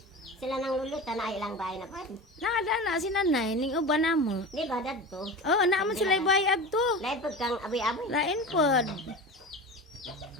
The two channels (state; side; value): normal; both; correlation 0.30